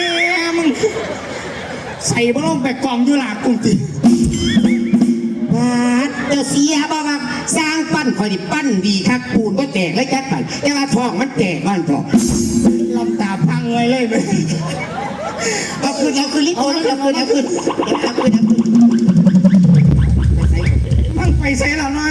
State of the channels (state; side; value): identical; both; correlation 1.00